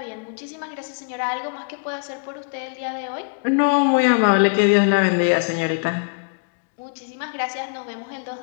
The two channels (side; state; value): right; quieter; 35.6 dB